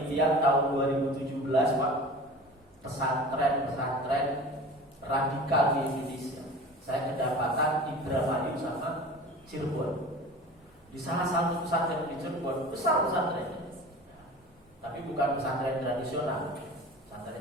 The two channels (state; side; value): normal; both; correlation 0.38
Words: tahun 2017, Pak, pesantren radikal di Indonesia. Saya kedapatan Indramayu sama Cirebon. Di salah satu pesantren di Cirebon, besar pesantrennya, tapi bukan pesantren tradisional,